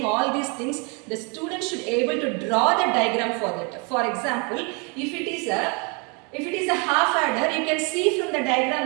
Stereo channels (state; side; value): quieter; left; 33.0 dB